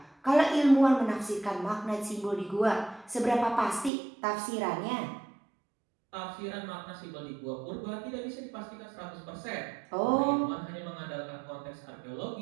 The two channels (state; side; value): drops out; left; at 3.9 s